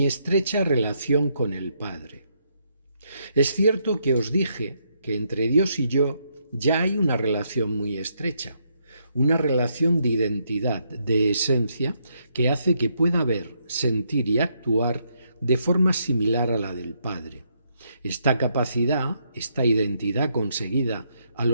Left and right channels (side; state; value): both; inverted; correlation -0.75